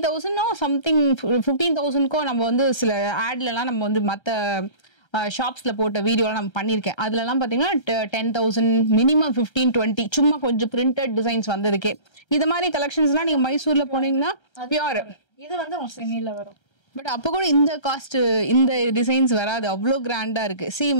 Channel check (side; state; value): right; late; 1.3 ms